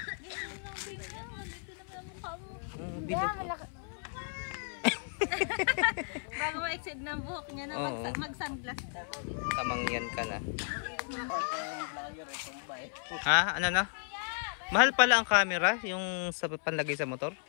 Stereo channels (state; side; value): silent; right; 55 dB below the other